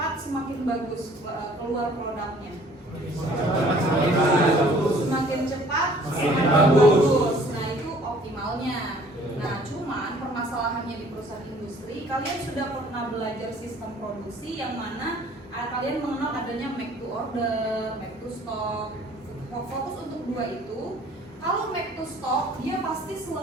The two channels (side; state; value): both; normal; correlation 0.55